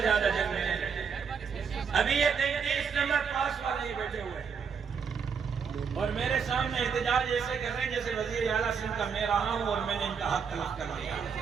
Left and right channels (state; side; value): quieter; left; 6.3 dB